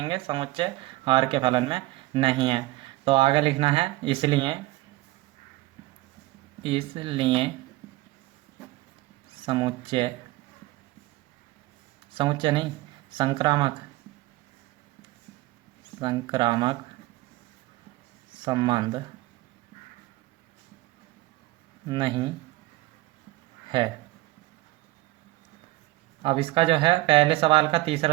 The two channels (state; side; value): quieter; left; 18.8 dB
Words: समुच्चय आर के फलन में नहीं है। तो आगे लिखना है इसलिए समुच्चय नहीं, संक्रामक संबंध नहीं है। अब इसका जो है पहले सवाल का